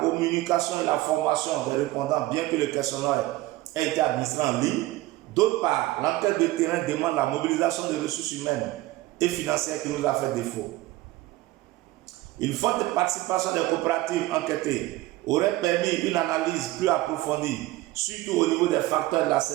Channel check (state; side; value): quieter; left; 17.9 dB